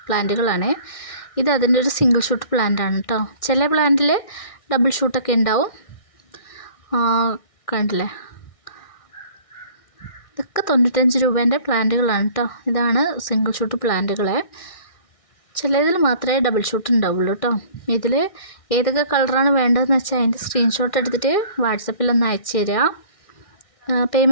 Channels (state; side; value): late; right; 1.6 ms